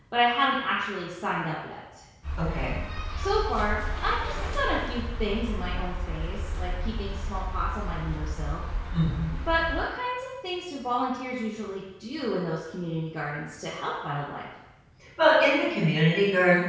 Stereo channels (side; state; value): both; identical; correlation 1.00